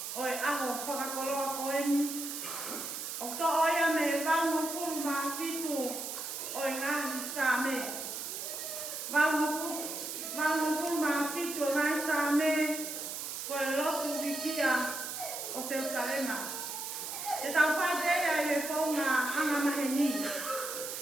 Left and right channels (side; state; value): right; noise; hiss, 6 dB below the sound